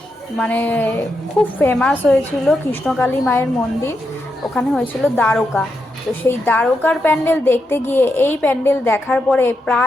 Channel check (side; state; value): both; normal; correlation 0.84